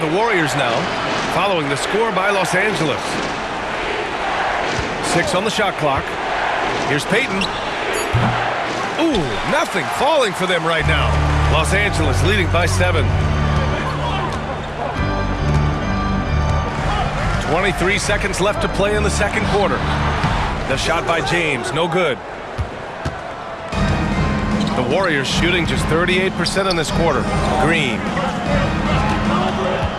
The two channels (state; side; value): identical; both; correlation 1.00